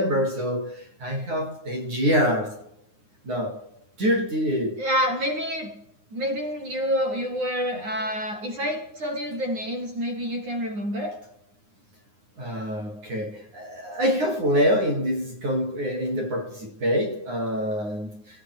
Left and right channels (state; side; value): late; left; 9.7 ms